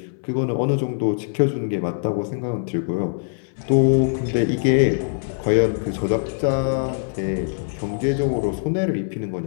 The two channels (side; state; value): right; silent; 60 dB below the other